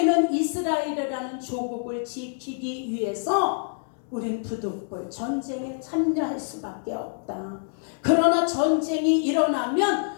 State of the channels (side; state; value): right; silent; digital silence